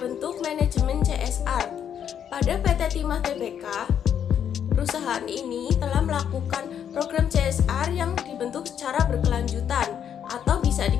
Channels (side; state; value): right; quieter; 8.8 dB